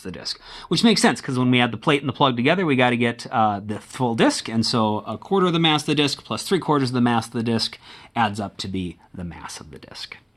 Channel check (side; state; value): both; identical; correlation 1.00